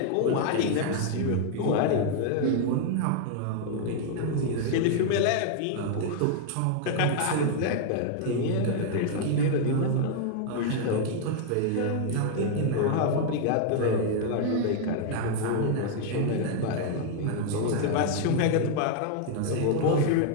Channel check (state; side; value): different; both; correlation 0.00